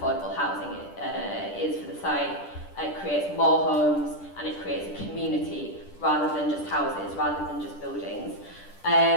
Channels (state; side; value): late; right; 10 ms